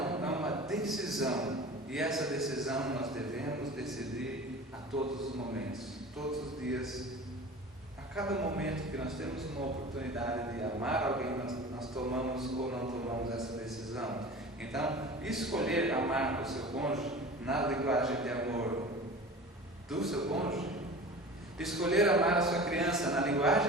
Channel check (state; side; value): normal; both; correlation 0.37